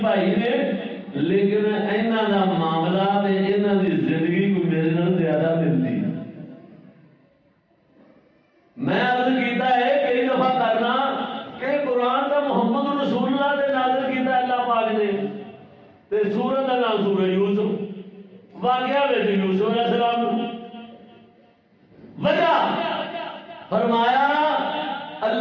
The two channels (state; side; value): identical; both; correlation 1.00